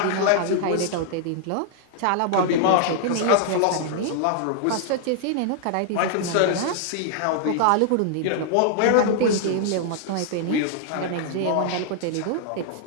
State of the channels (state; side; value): different; both; correlation 0.00